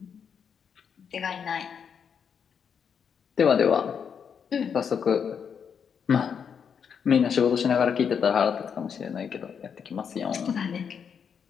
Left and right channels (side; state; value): right; quieter; 7.1 dB